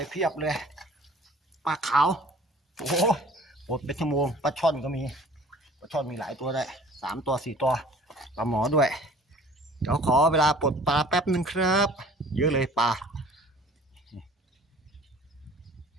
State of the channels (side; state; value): both; normal; correlation 0.49